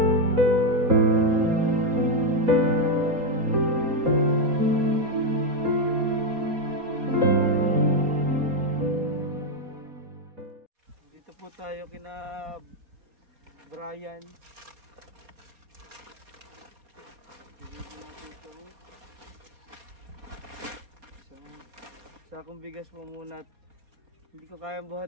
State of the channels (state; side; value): late; left; 4.2 ms